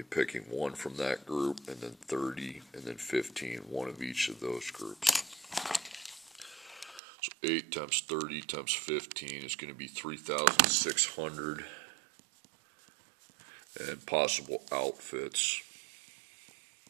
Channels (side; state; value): left; drops out; at 7.0 s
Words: picking one from that group, and then 30, and then 15, one of each of those groups. So 8 times 30 times 15 is going to be 3,600, and possible outfits.